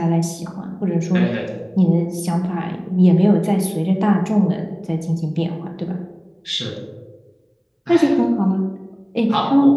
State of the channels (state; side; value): identical; both; correlation 1.00